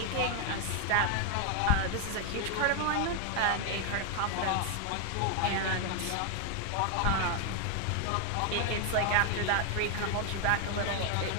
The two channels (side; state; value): both; different; correlation 0.00